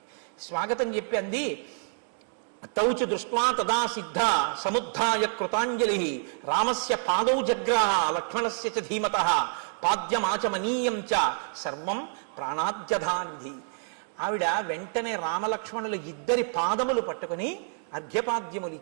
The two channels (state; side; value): silent; left; 59 dB below the other